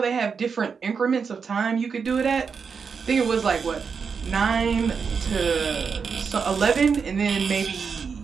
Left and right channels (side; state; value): left; quieter; 5.8 dB